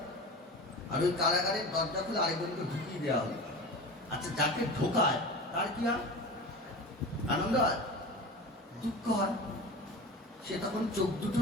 আর ওই কারাগারের দরজা খুলে আরেকজনকে ঢুকিয়ে দেওয়া হলো। আচ্ছা, যাকে ঢোকায় তার কি হয়, আনন্দ হয়, দুঃখ হয়? সে তখন চোখ দুটো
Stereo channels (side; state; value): both; normal; correlation 0.32